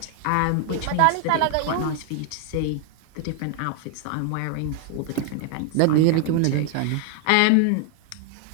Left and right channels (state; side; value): different; both; correlation 0.00